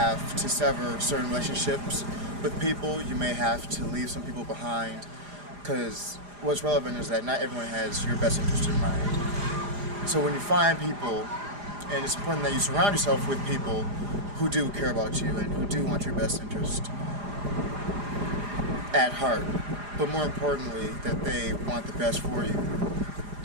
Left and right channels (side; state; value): left; late; 4.9 ms